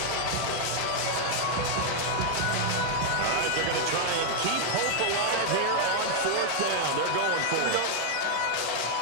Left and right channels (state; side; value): different; both; correlation 0.00